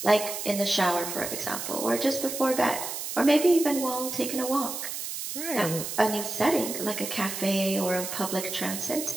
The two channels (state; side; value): noise; right; hiss, 6 dB below the sound